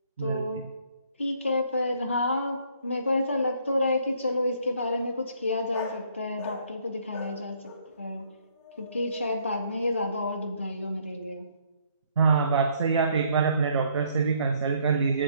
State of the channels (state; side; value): inverted; both; correlation -0.65